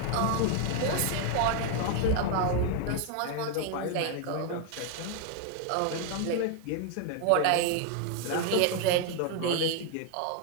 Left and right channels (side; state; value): both; different; correlation 0.00